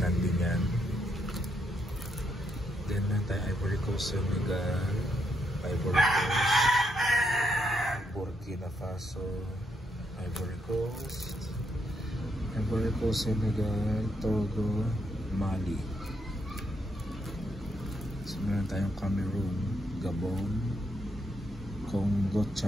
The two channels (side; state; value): both; normal; correlation 0.77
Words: din yan. Then tayo Ivory Coast, Senegal, Ivory Coast, Burkina Faso, Ivory Coast, Senegal, Togo, Mali. So meron tayong Cameroon, Gabon, Congo,